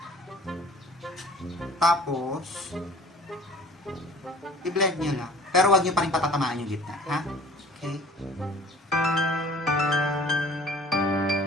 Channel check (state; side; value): normal; both; correlation 0.48